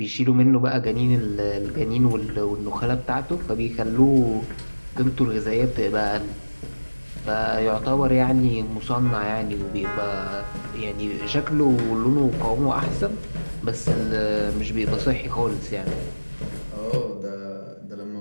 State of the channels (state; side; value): inverted; both; correlation -1.00